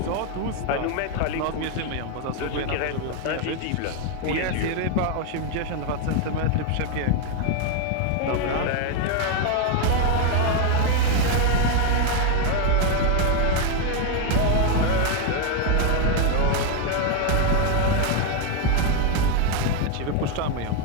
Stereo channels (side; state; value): both; different; correlation 0.01